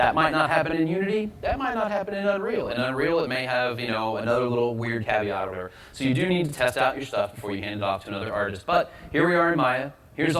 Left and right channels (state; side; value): identical; both; correlation 1.00